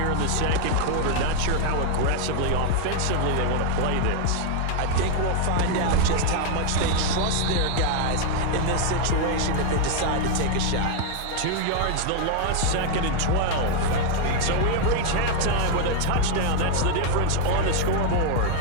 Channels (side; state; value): both; different; correlation 0.00